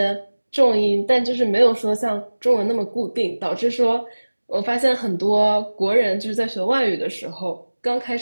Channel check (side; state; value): both; inverted; correlation -1.00